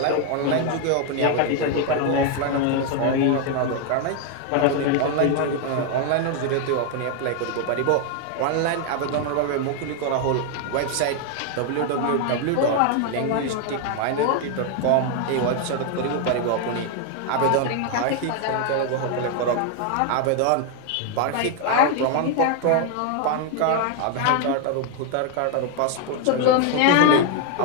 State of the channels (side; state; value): both; different; correlation 0.00